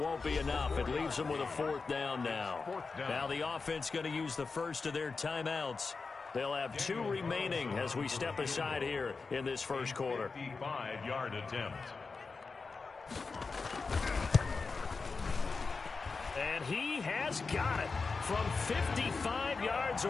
be enough. It leaves them with a 4th down now. Now the offense going to use the first of their timeouts. They'll have 2 remaining as we step aside here in this first quarter. 55-yard attempt. And he has got it from 55 yards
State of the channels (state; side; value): quieter; right; 4.4 dB